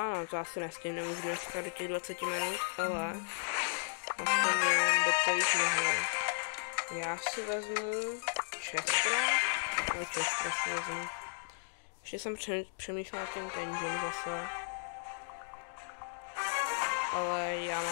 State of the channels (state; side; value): silent; right; digital silence